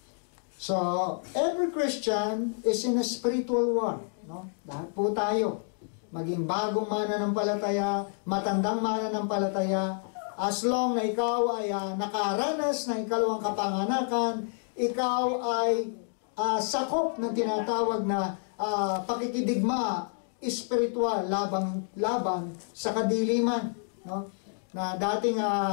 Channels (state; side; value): silent; right; 59 dB below the other